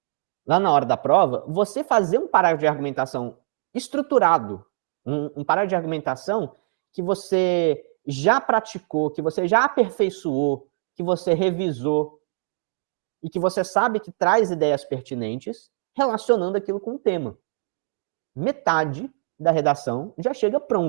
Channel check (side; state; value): left; silent; digital silence